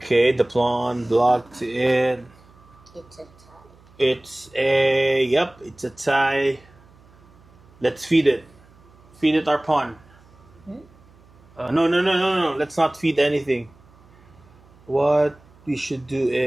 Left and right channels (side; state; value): right; noise; hum, 27 dB below the sound